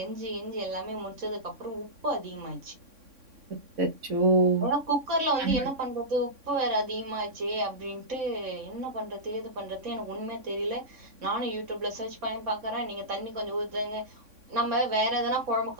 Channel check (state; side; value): late; left; 3.6 ms